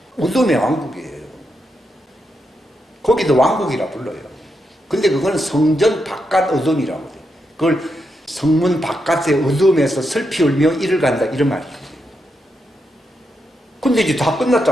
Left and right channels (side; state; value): both; normal; correlation 0.83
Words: 어둠의 왕국이에요. 거기도 왕국이라 불러요. 근데 그거는 성전 바깥 어둠이라고 돼요. 그걸 성문 바깥의 어둠에서 슬피 울며 이를 간다 이런 말이에요. 근데 이제 다